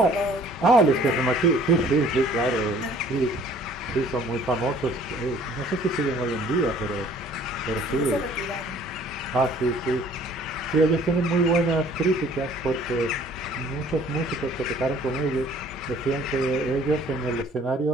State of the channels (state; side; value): normal; both; correlation 0.55